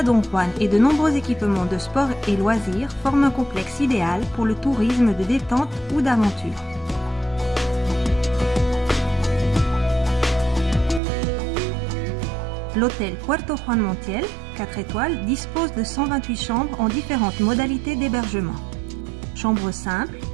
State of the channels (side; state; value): left; drops out; at 11.0 s